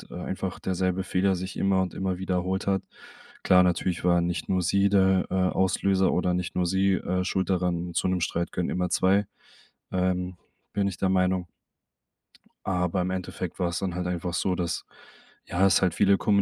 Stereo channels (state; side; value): identical; both; correlation 1.00